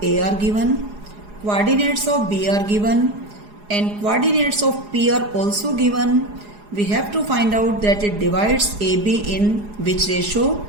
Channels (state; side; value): late; left; 4.8 ms